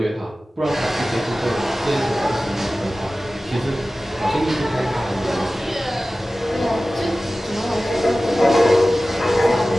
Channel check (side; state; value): both; normal; correlation 0.96